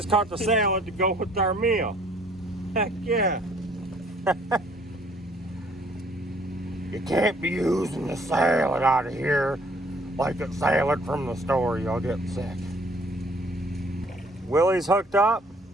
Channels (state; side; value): normal; both; correlation 0.59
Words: caught the salad to go with our meal. Heck yeah. You can't be using the salad out of here like it's salad from the store. You'll get sick. Willie's hooked up.